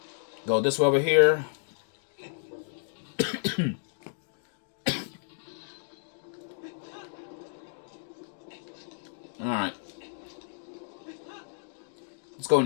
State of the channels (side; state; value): right; silent; digital silence